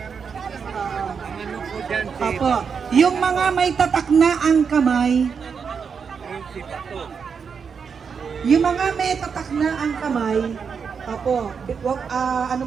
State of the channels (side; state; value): left; quieter; 6.2 dB